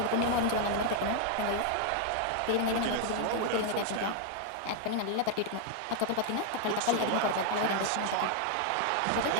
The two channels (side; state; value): both; different; correlation 0.00